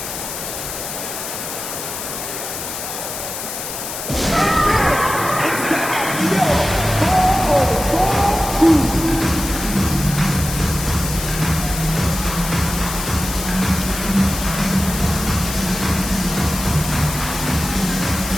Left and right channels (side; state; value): left; noise; hiss, 7 dB below the sound